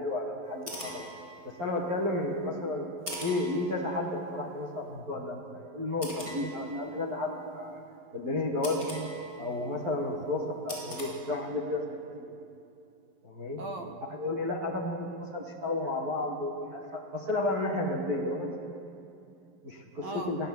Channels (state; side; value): late; left; 11 ms